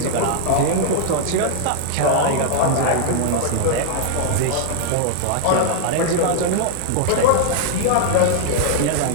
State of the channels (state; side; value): different; both; correlation -0.01